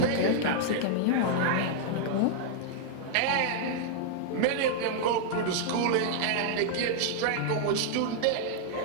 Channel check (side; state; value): both; different; correlation -0.01